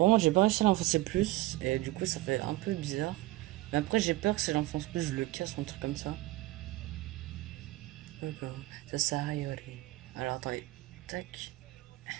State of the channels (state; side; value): quieter; left; 18.3 dB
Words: moi, j'ai pas réussi à l'enfoncer plus et du coup, ça fait un peu bizarre. Mais après, j'ai peur que si j'enfonce plus, je le casse ou un truc comme ça. Ça sert à rien. Alors attendez, tac.